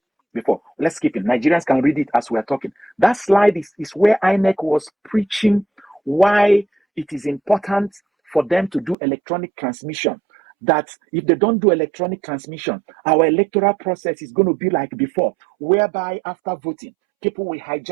before, let's keep it. Nigerians can read it as we're talking. That slide is where INEC was preaching why it is important for them to do electronic transmission. That if they don't do electronic transmission, our electoral process is going to be like before, whereby after voting, people will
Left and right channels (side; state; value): left; drops out; at 9.0 s